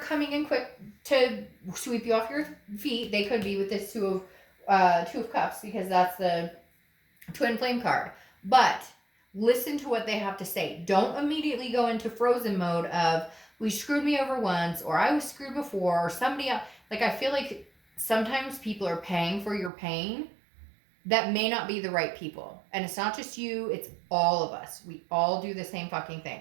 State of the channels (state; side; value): drops out; left; at 19.7 s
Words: in quick to sweep you off your feet. They could be with this Two of Cups, because that's the twin flame card. But listen to what they have to say. Don't immediately go into frozen mode of, we screwed me over once, or I was screwed before, or somebody else. Like, I feel like sometimes people are paying for your pain that may not be the right people. And it's not just you, it's all of us. We all do the same fucking thing.